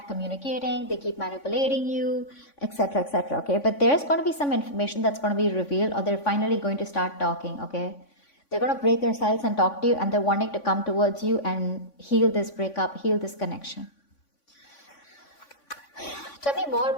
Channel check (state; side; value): late; right; 3.5 ms